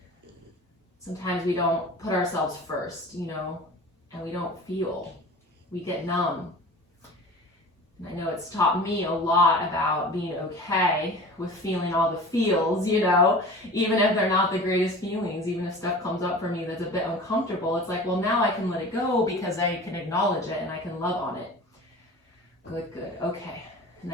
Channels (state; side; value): normal; both; correlation 0.38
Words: Sometimes we don't put ourselves first, you know, and we don't feel. We get numb. And I know it's taught me a lot about being okay with feeling all the feels, you know, even if they're not the greatest feelings, even if stuff comes up for me that's a bit uncomfortable, it's like, well, now I can let it go because I can acknowledge it and I can love on it. Good, good, okay. And